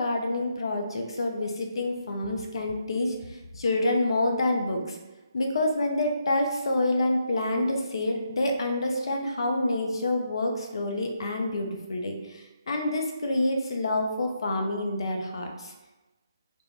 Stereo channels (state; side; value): inverted; both; correlation -0.79